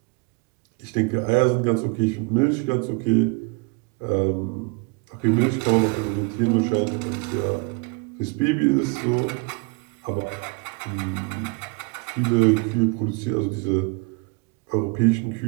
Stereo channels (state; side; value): quieter; left; 30.4 dB